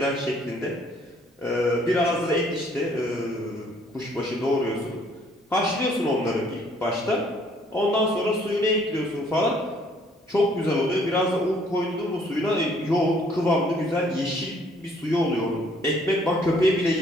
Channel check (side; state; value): both; normal; correlation 0.62